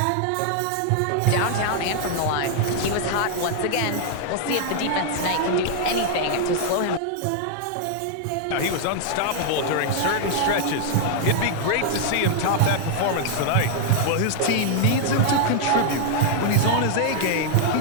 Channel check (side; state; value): both; different; correlation 0.00